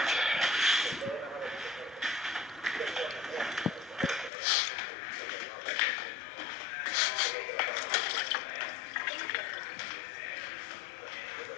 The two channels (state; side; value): drops out; right; at 4.3 s